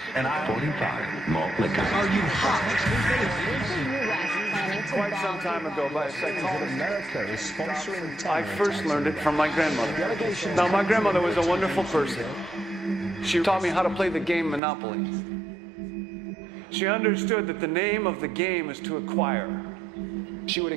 and 45 malt liquor. Are you hot? Quite some time ago, by a second, America is sponsoring I first learned it from my grandmother. Now, my grandmother was a wonderful person. She taught me how to play the game Monopoly. She understood that the name of the game is to acquire. She would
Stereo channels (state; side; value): drops out; left; at 14.6 s